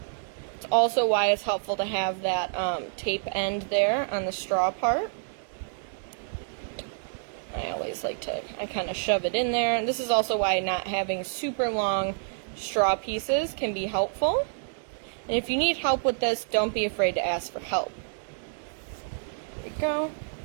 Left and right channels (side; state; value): left; silent; digital silence